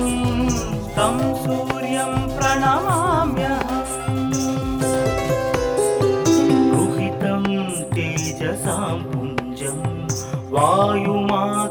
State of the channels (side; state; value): both; identical; correlation 1.00